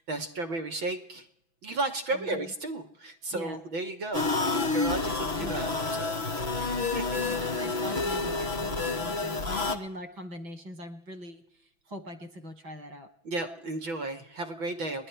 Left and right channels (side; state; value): left; late; 6.0 ms